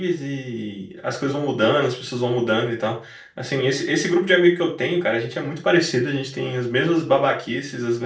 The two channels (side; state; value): both; identical; correlation 1.00